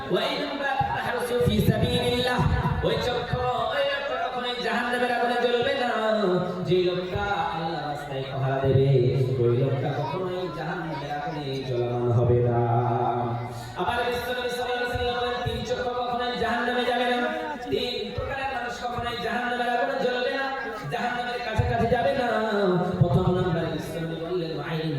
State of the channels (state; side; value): identical; both; correlation 1.00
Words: ওয়া আইনুন বাকাত তাহরসু ফি সাবিলিল্লাহ, ওই চক্ষু ওই লোকটা কখনোই জাহান্নামের আগুনে জ্বলবে না, যে লোকটা আল্লাহর রাস্তায় পাহারা দেবে, ওই লোকটা কখনোই জাহান্নামের আগুনে জ্বলমান হবে না। আবার বিশ্বনবী সাল্লাল্লাহু আলাইহি ওয়াসাল্লাম বলেন, তিন চক্ষু কখনোই জাহান্নামে যাবে না, তিন প্রকারের মানুষ কখনোই জাহান্নামের আগুনে জ্বলবে না, জাহান্নামের কাছাকাছি যাবে না। প্রথম নম্বরে বিশ্বনবী বললেন, আইনুন